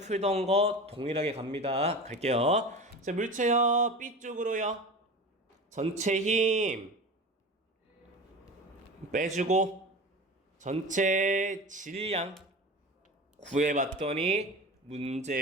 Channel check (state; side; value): normal; both; correlation 0.32